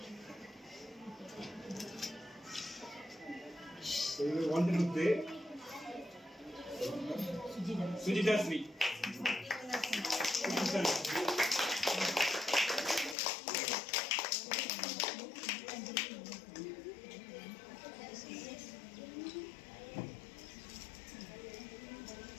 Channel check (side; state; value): right; drops out; at 13.2 s